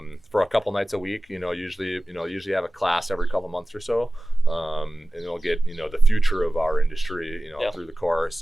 a couple nights a week. Usually have a class every couple months or so, and they'll get the future of our industry, through the course.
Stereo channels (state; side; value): normal; both; correlation 0.96